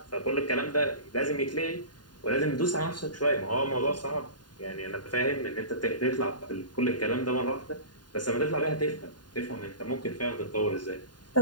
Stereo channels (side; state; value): right; late; 0.70 ms